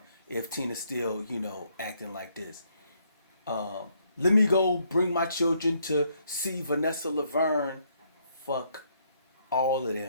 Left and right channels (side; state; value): both; inverted; correlation -0.71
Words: if Tina's still, acting like this. Let me go bring my children to see Vanessa Laverne. Fuck all of